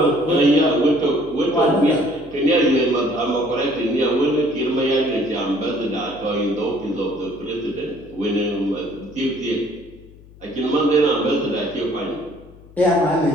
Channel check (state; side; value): noise; left; hum, 23 dB below the sound